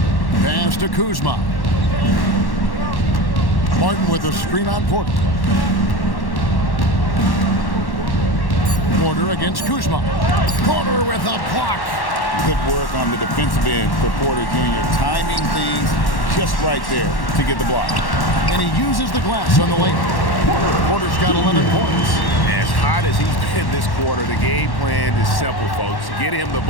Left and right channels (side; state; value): right; late; 1.1 ms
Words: Pass to Kuzma. Martin with a screen on Porter. Porter against Kuzma. Porter with a block. Good work on the defensive end for Porter Jr. Timing things just right there to get the block. And he uses the glass on the lane. Porter's got 11 points. As hot as he's been this quarter, the game plan is simple, folks. Get him the